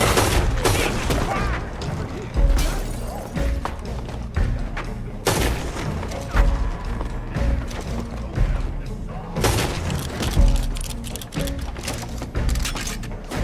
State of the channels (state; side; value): identical; both; correlation 1.00